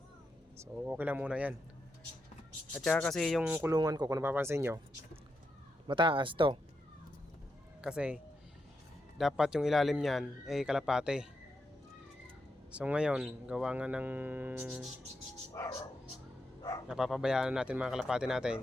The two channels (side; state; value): both; normal; correlation 0.84